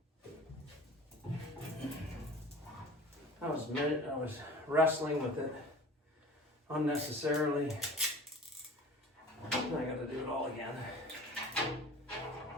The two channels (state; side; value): normal; both; correlation 0.41